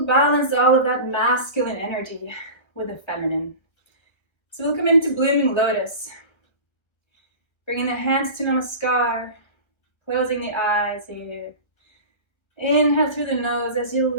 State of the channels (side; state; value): right; late; 1.3 ms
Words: balance all of that masculine energy with the feminine. So we'll come into blooming lotus, bringing the hands to namaskar, closing the eyes here. Inhale through the nose as you